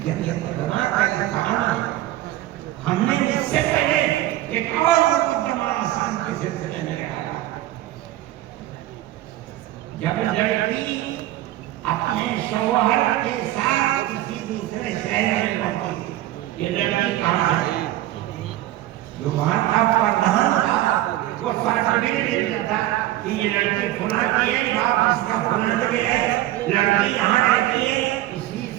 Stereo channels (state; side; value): quieter; left; 14.9 dB